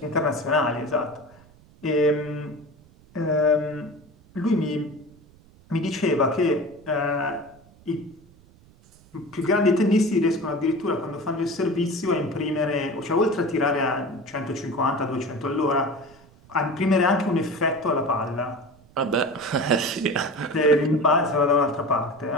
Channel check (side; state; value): right; noise; rumble, 26 dB below the sound